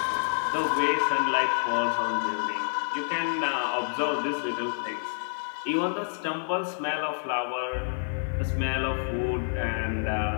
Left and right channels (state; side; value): silent; right; 59 dB below the other